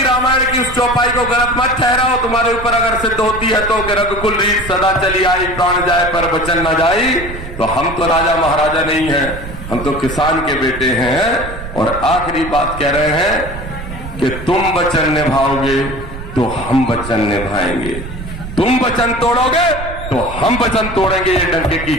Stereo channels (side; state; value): right; noise; rumble, 10 dB below the sound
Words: रामायण की उस चौपाई को गलत मत ठहराओ। तुम्हारे ऊपर अगर सिद्ध होती है तो रघुकुल रीत सदा चली आई, प्राण जाए पर वचन न जाई। तो हम तो राजा महाराजा नहीं हैं, हम तो किसान के बेटे हैं। और आखिरी बात कह रहे हैं कि तुम वचन निभाओगे तो हम वचन निभाएंगे, तुम वचन तोड़ोगे तो हम वचन तोड़ेंगे। ये डंके की